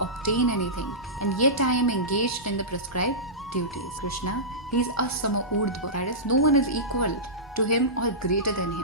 anything, and yet I am engaged in the prescribed duties. Krishna, he is asama urdhva, that is, no one is equal to him or greater than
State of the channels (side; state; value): both; normal; correlation -0.18